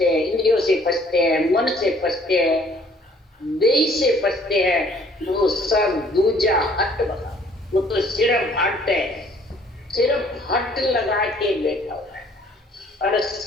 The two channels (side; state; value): both; normal; correlation 0.59